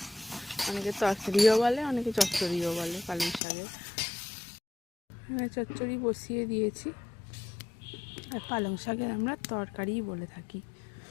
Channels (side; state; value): right; drops out; at 3.4 s